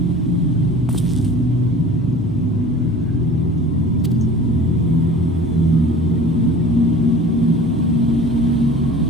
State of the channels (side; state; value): both; normal; correlation 0.43